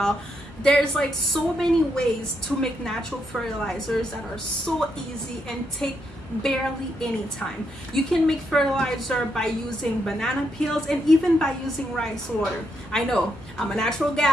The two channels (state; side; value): normal; both; correlation 0.79